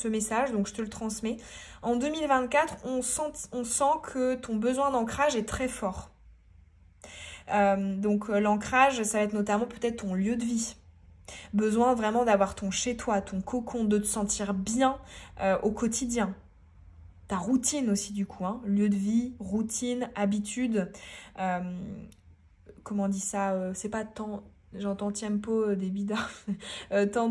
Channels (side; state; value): both; identical; correlation 1.00